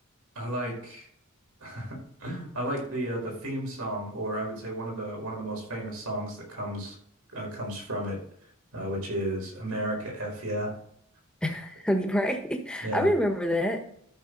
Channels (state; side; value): normal; both; correlation 0.48